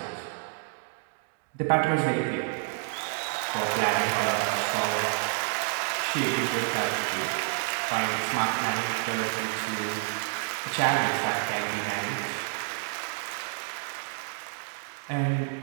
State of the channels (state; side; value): silent; left; 59 dB below the other